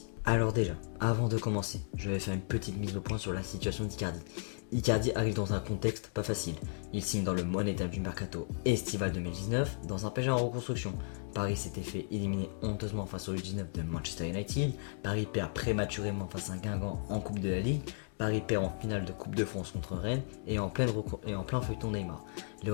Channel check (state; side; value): silent; right; digital silence